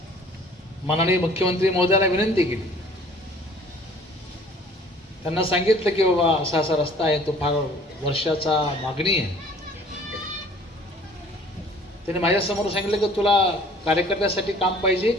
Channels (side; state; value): both; normal; correlation 0.52